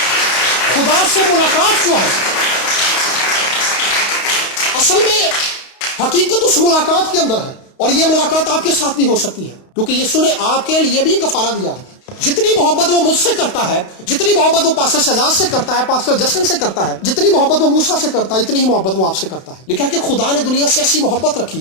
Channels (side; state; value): right; late; 32 ms